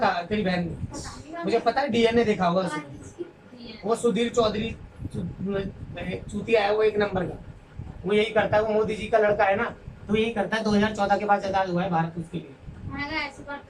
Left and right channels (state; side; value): identical; both; correlation 1.00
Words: तेरी बहन ने? पता नहीं मुझे पता है, डीएनए देखा होगा उसने। उसने। वो सुधीर चौधरी चूतिया है वो, एक नंबर का। वो यही करता है, वो मोदी जी का लड़का है ना, तो यही करता है। 2014 के बाद आजाद हुआ है भारत उसके लिए। ऐसी बात